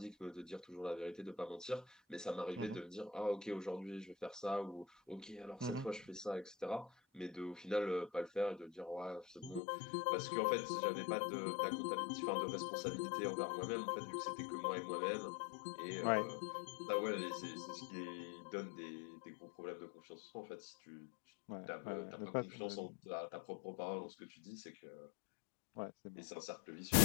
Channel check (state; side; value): drops out; right; at 9.6 s